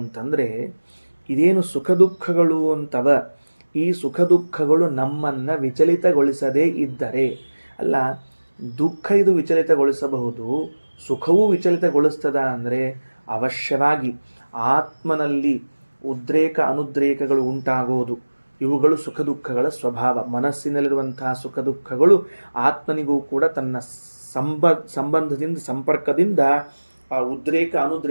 ಅಂತಂದರೆ, ಇದೇನು ಸುಖ ದುಃಖಗಳು ಅಂತವ, ಈ ಸುಖ ದುಃಖಗಳು ನಮ್ಮನ್ನು ವಿಚಲಿತಗೊಳಿಸದೇ ಇದ್ದರೆ, ಅಲ್ಲ ದುಃಖ ಇದು ವಿಚಲಿತಗೊಳಿಸಬಹುದು, ಸುಖವೂ ವಿಚಲಿತಗೊಳಿಸ್ತದ ಅಂದರೆ ಅವಶ್ಯವಾಗಿ ಆತ್ಮನಲ್ಲಿ ಉದ್ರೇಕ ಅನುದ್ರೇಕಗಳು ಉಂಟಾಗೋದು. ಇವುಗಳು ಸುಖ ದುಃಖಗಳ ಸ್ವಭಾವ. ಮನಸ್ಸಿನಲ್ಲಿರುವಂತಹ ಸುಖ ದುಃಖಗಳು ಆತ್ಮನಿಗೂ ಕೂಡ ತನ್ನ ಸಂಬಂಧದಿಂದ ಸಂಪರ್ಕದಿಂದ ಆ ಉದ್ರೇಕ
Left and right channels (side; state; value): both; inverted; correlation -1.00